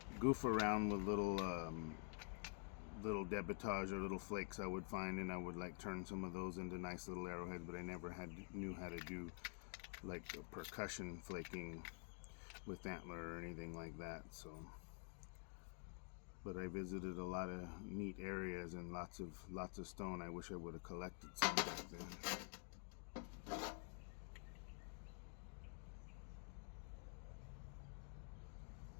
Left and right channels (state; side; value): quieter; right; 39.5 dB